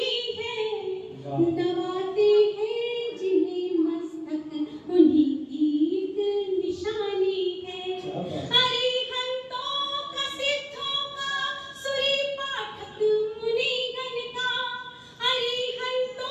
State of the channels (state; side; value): identical; both; correlation 1.00